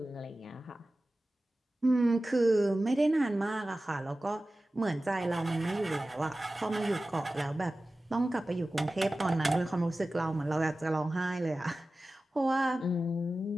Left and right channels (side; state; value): both; normal; correlation 0.96